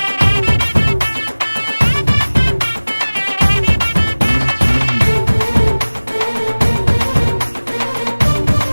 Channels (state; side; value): inverted; both; correlation -1.00